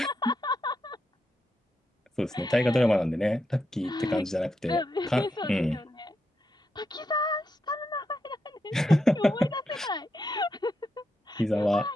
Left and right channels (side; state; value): both; normal; correlation 0.84